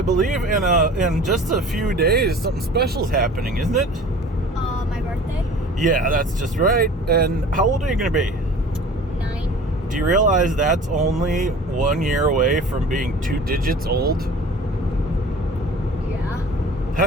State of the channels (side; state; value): both; normal; correlation 0.43